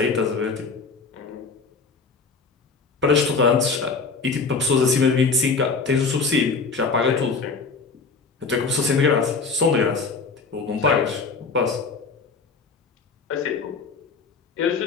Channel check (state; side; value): quieter; right; 4.6 dB